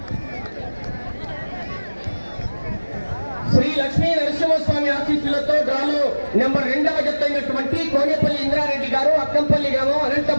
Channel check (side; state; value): both; inverted; correlation -1.00